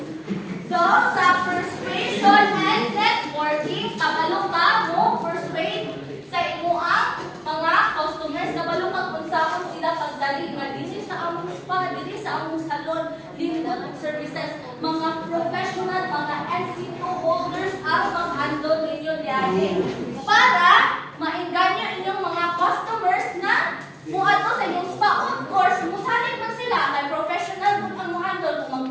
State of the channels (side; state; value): both; identical; correlation 1.00